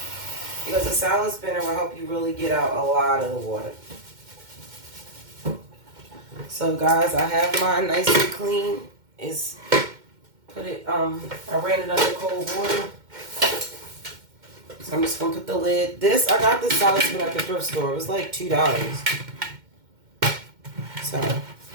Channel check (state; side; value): late; left; 2.1 ms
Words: because a salad spinner will help you really get out a lot of the water. So guys, I have mine nice and clean. I ran it under cold water. So I'm just going to put the lid. I got this salad spinner at the thrift store. It was like $2. So,